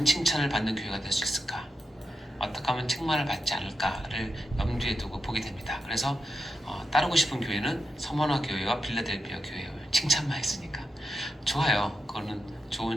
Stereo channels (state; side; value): normal; both; correlation 0.87